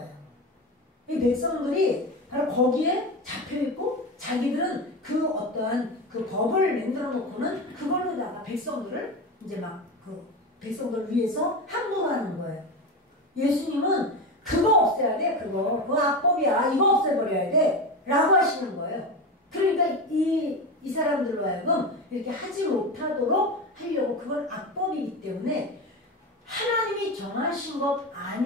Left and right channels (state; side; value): normal; both; correlation 0.21